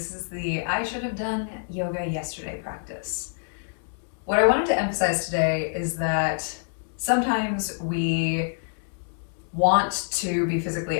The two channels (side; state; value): right; silent; 61 dB below the other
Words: is the I should have done yoga yesterday practice. What I wanted to emphasize today is that sometimes we want to be physically